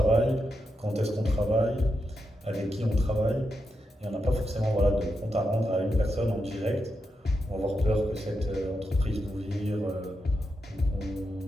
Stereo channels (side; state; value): both; normal; correlation 0.85